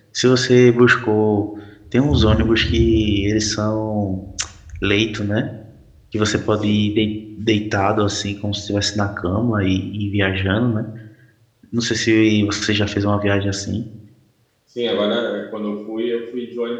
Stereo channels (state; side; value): identical; both; correlation 1.00